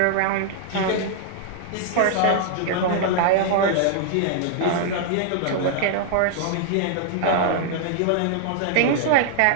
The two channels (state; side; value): different; both; correlation 0.00